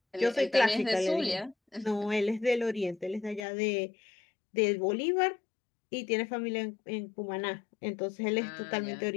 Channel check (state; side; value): drops out; right; at 3.5 s